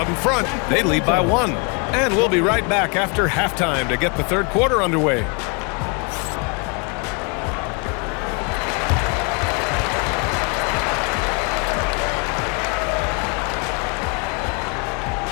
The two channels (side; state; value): right; quieter; 33.8 dB